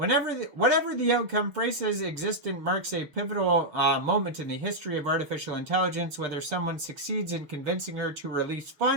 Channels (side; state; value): left; late; 6.7 ms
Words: the outcome, Freysa's existence marks a pivotal moment in the history of artificial intelligence, whether someone succeeds in convincing her to release